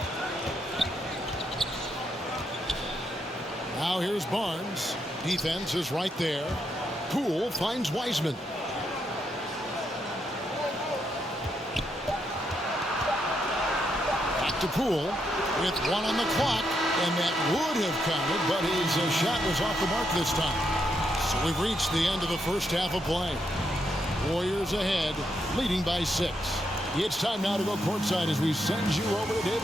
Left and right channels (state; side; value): normal; both; correlation 0.79